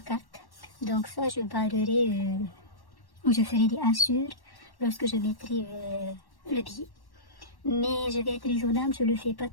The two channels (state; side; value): late; right; 1.1 ms